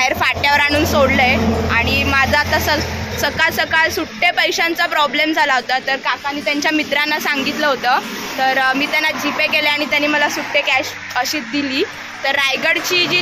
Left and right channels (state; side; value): identical; both; correlation 1.00